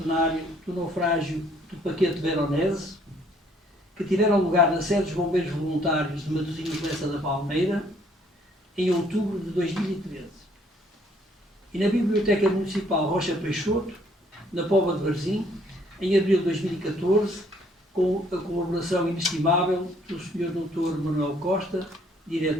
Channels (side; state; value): both; normal; correlation 0.63